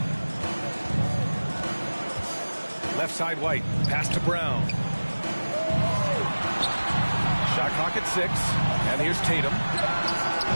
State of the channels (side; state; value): both; inverted; correlation -1.00